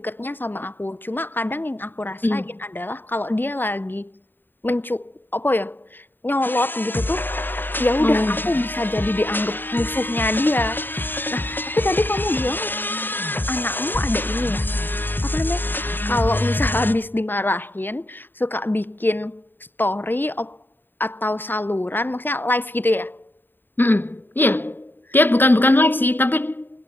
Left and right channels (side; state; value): right; late; 0.094 ms